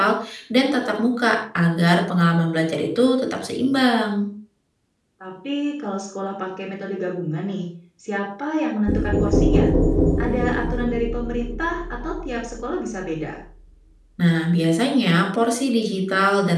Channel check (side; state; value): both; identical; correlation 1.00